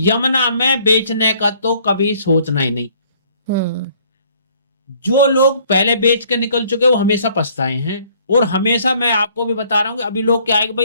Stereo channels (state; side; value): inverted; both; correlation -0.60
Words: में बेचने का तो कभी सोचना ही नहीं। जो लोग पहले बेच के निकल चुके वो हमेशा पछताए हैं। और हमेशा मैं आपको भी बता रहा हूं कि अभी लोग क्या है कि